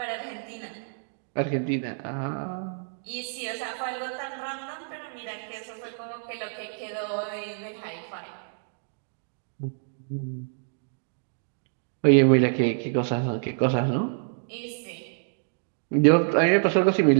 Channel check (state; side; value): silent; left; digital silence